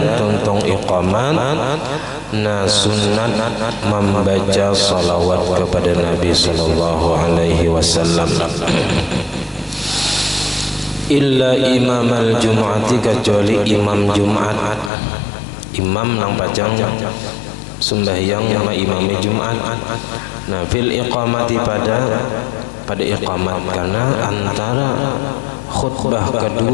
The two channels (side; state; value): right; drops out; at 14.9 s